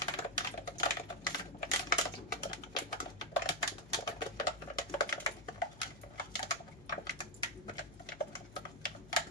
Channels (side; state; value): left; noise; hum, 19 dB below the sound